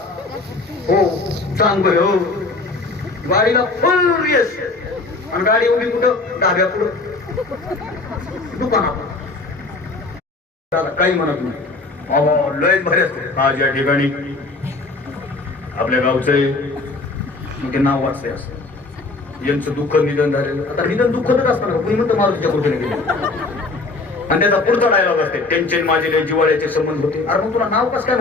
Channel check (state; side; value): quieter; right; 3.5 dB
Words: हो चांगलं हो, गाडीला फुल रेस आणि गाडी उभी कुठं? डाव्या पुढं दुकानात। काही म्हणत नाही, लयच भारी असते आज या ठिकाणी आपल्या गावचं नाव वाचले असं, यांचं दुःख निधन झालेलं। आता निधन दुःखच असणार का? कुणी म्हणतं मारुतीच्या कुठे गेले, आणि त्याचा पुढचा डायलॉग असते, त्यांचे माझे लय जिवाळ्याचे संबंध होते। अरे मग तुला नाव कसं काय